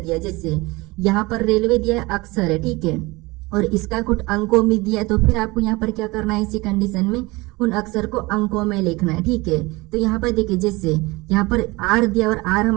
जैसे यहाँ पर रेलवे दिया है, अक्षर है। ठीक है, और इसका कुछ अंकों में दिया है, तो फिर आपको यहाँ पर क्या करना है, इसी कंडीशन में उन अक्षर को अंकों में लिखना है। ठीक है, तो यहाँ पर देखिए जैसे यहाँ पर आर दिया और आर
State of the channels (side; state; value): left; quieter; 22.9 dB